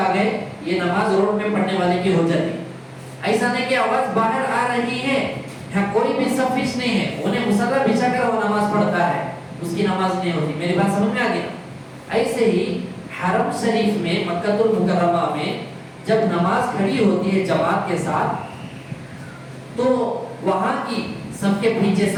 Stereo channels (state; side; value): identical; both; correlation 1.00